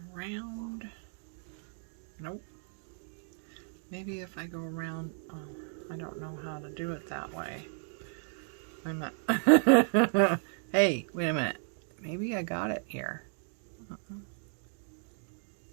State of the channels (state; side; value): silent; left; 55 dB below the other